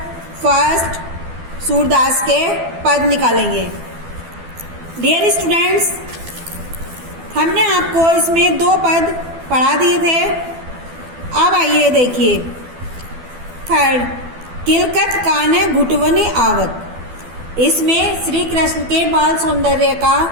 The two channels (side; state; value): left; late; 12 ms